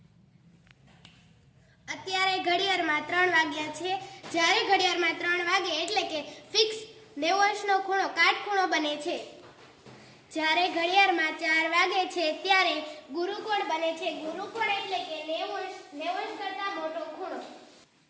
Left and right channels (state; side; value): identical; both; correlation 1.00